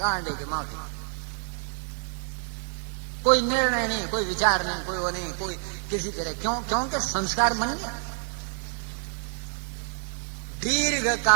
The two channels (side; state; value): left; silent; 60 dB below the other